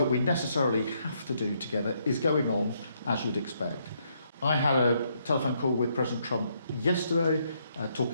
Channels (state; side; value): inverted; both; correlation -0.74